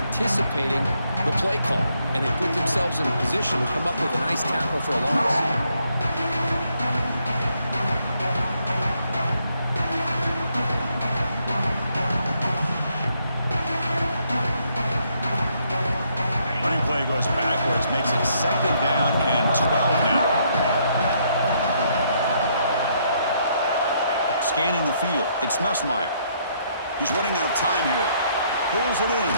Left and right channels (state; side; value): inverted; both; correlation -0.72